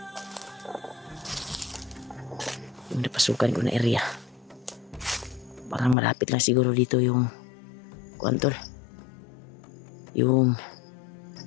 Yung napasukan ko na area. Parang malapit lang siguro dito yung kuantol. Yung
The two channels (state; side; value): drops out; right; at 6.0 s